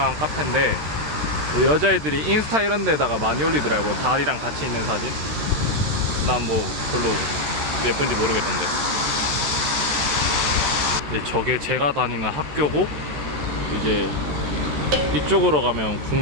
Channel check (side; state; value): left; late; 13 ms